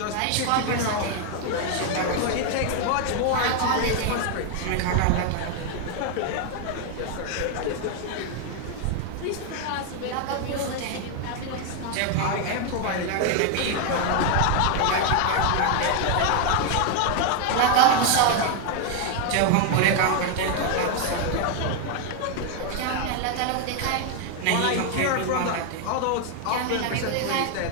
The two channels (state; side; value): different; both; correlation 0.01